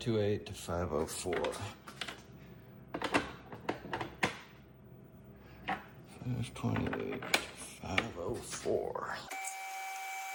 to 504. 528 to 504.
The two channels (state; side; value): identical; both; correlation 1.00